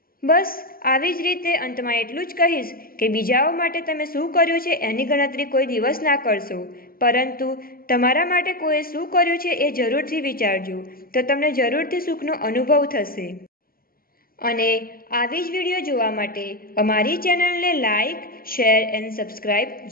બસ આવી જ રીતે અંતમાં એટલું જ કહીશ કે બીજાઓ માટે તમે શું કર્યું છે એની ગણતરી કોઈ દિવસ ના કરશો, પરંતુ તમારા માટે કોઈએ શું કર્યું છે એ જરૂરથી વિચારજો, તો તમને જરૂરથી સુખનો અનુભવ થશે। અને આવી જ વિડીયો જોવા માટે અમારી ચેનલને લાઈક, શેર એન્ડ સબસ્ક્રાઈબ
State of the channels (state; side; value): late; right; 0.42 ms